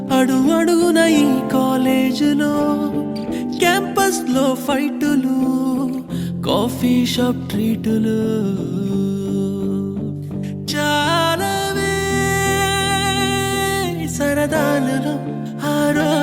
అడుగడుగున ఈ కాలేజీలో, క్యాంపస్ లో ఫైటులు, కాఫీ షాప్ ట్రీటులు, చాలావే సరదాలలో ఆ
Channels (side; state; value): both; identical; correlation 1.00